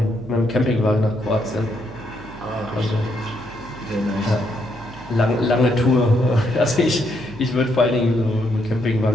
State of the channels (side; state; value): right; noise; hum, 18 dB below the sound